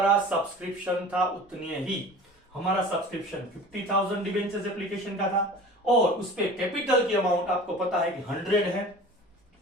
सब्सक्रिप्शन था उतने ही। हमारा सब्सक्रिप्शन 50,000 डिबेंचर्स एप्लीकेशन का था और उस पे कैपिटल की अमाउंट आपको पता है कि 100 है।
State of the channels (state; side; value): normal; both; correlation 0.41